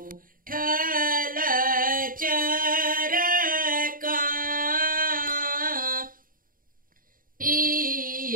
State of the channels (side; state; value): left; late; 0.41 ms